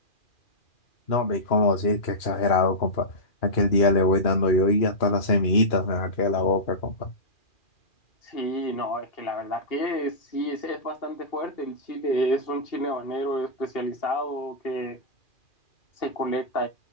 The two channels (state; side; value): late; right; 2.4 ms